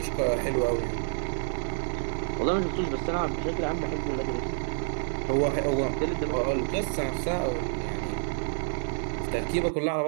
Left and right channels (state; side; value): silent; left; digital silence